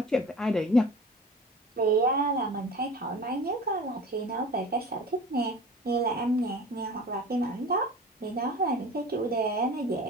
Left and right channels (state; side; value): normal; both; correlation 0.38